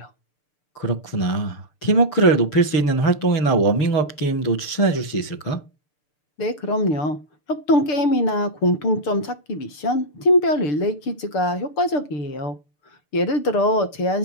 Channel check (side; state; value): right; late; 6.7 ms